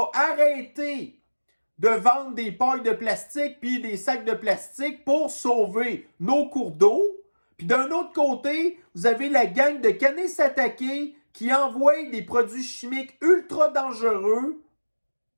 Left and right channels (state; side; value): inverted; both; correlation -1.00